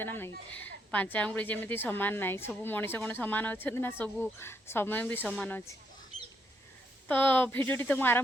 ना नहीं पांच आंगुड़ी जमी सामान ना सब मनीष कौन सामान अच्छा ना सब समय भी सामान अच्छे तो भिडियोटी तो मुझे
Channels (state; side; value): normal; both; correlation 0.75